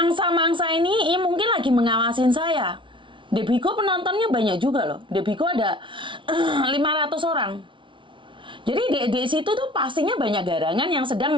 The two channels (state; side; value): late; left; 0.24 ms